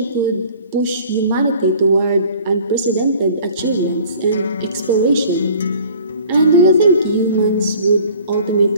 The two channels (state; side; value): inverted; both; correlation -0.49